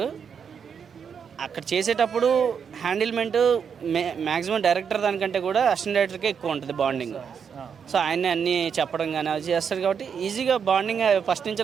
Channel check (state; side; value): quieter; left; 6.9 dB